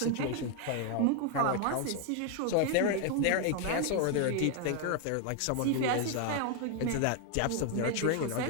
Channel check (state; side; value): different; both; correlation 0.00